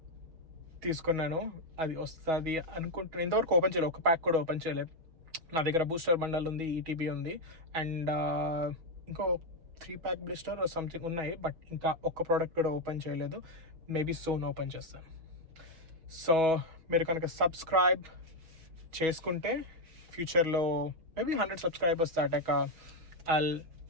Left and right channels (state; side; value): late; left; 6.2 ms